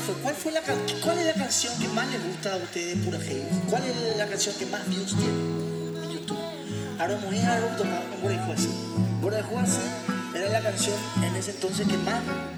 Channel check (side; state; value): both; identical; correlation 1.00